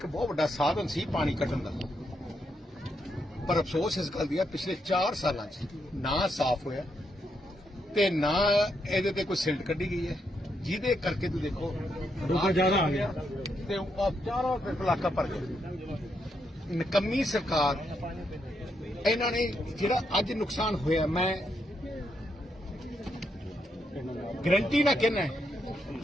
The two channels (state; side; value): normal; both; correlation 0.80